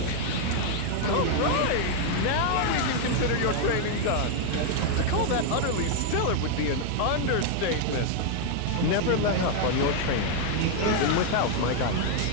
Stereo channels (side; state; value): both; different; correlation 0.00